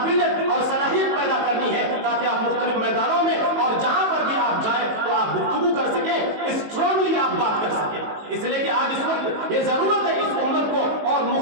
اور صلاحیت پیدا کرنی ہے تاکہ آپ مختلف میدانوں میں اور جہاں پر بھی آپ جائیں تو آپ گفتگو کر سکیں، اسٹرانگلی آپ بات کر سکیں۔ اس لیے کہ آج اس وقت یہ ضرورت ہے اس امت کو، اور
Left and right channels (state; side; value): late; left; 19 ms